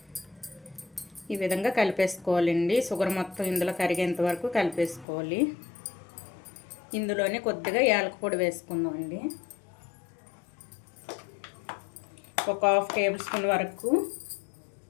ఈ విధంగా కలిపేసుకోవాలండి. షుగర్ మొత్తం ఇందులో కరిగేంత వరకు కలిపేసుకోవాలి. ఇందులోనే కొద్దిగా యాలకుల పొడి వేసుకుందామండి. ఒక 1/2 టేబుల్ స్పూన్ వరకు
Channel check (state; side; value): drops out; right; at 5.1 s